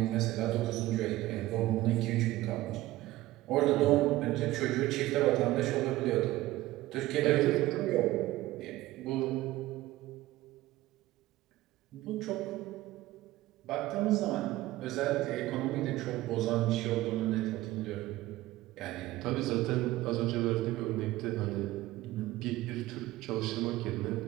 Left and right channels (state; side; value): quieter; left; 17.0 dB